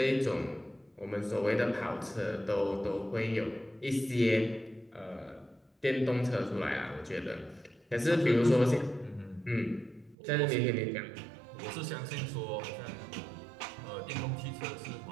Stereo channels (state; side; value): drops out; left; at 10.2 s